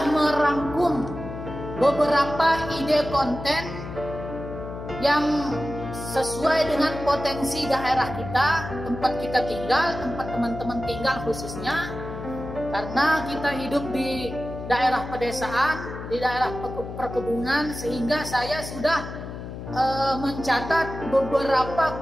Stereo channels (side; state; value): left; noise; hum, 9 dB below the sound